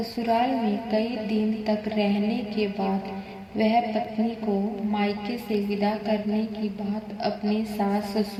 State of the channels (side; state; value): both; identical; correlation 1.00